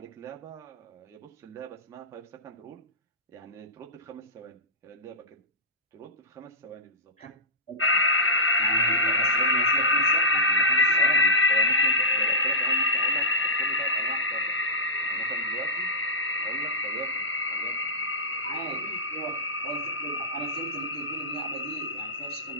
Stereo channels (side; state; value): both; normal; correlation -0.15